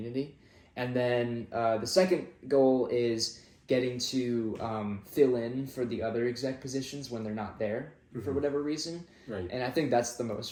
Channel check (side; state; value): both; identical; correlation 1.00